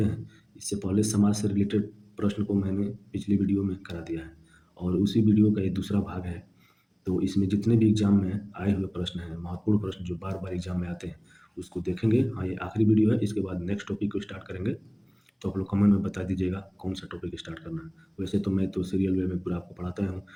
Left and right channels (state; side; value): identical; both; correlation 1.00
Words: हैं। इससे पहले समाज से रिलेटेड प्रश्न को मैंने पिछली वीडियो में करा दिया है और उसी वीडियो का ये दूसरा भाग है। तो इसमें जितने भी एग्ज़ाम में आए हुए प्रश्न हैं, महत्वपूर्ण प्रश्न जो बार-बार एग्ज़ाम में आते हैं, उसको देखेंगे। हाँ, ये आखिरी वीडियो है, इसके बाद नेक्स्ट टॉपिक को स्टार्ट करेंगे। तो आप लोग कमेंट में बता दीजिएगा कौन सा टॉपिक स्टार्ट करना है। वैसे तो मैं तो सीरियल वे में पूरा आपको पढ़ाता हूँ।